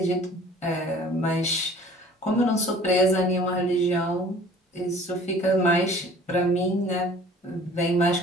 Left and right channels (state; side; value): normal; both; correlation 0.50